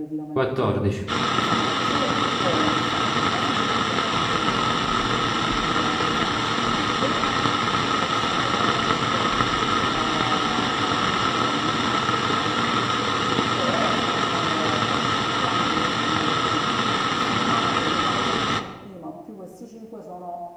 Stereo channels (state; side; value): identical; both; correlation 1.00